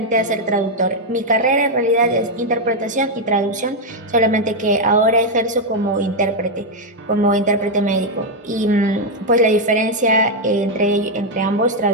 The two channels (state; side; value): normal; both; correlation 0.01